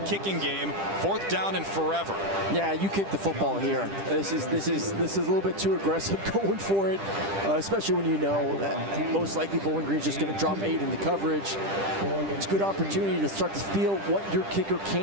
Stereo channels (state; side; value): late; left; 10 ms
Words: game. Fourth down and forever. Yeah, you kick the football here. This is a little bit too aggressive going for it, especially when you know that most likely Bowling Green's just going to drop 8 in the coverage. It's a good opportunity to start to feel what your kicker